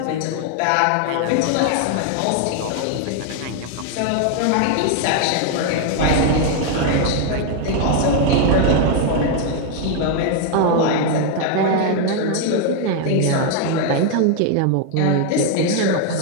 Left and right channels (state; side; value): different; both; correlation 0.01